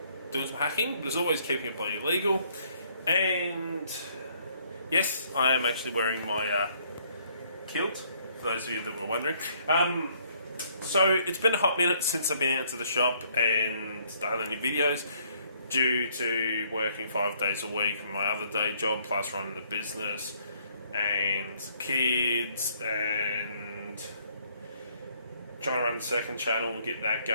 some hacking, but as always keeping it bloody legal. And yes, I am actually wearing my kilt, for those of you that were wondering. So it's been a hot minute since I've been out to the shop and done any videos, due to working 5 days a week from my other day job, plus running the business and kids and trying to run the second channel and get that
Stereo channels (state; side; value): inverted; both; correlation -0.65